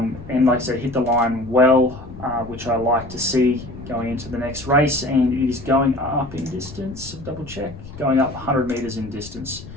like I said, hit the line well, which I like to see going into the next race. And it is going up in distance. Double check. Going up 100 metres in distance.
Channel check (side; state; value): left; noise; rumble, 15 dB below the sound